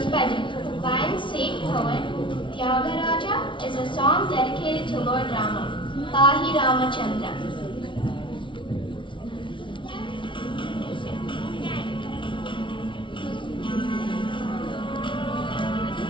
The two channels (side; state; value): right; late; 0.24 ms